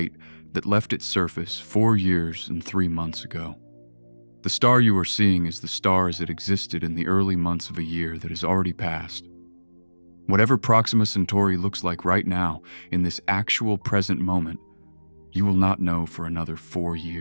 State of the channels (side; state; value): both; inverted; correlation -1.00